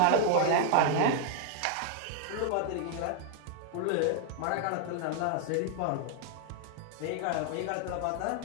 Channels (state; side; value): different; both; correlation 0.00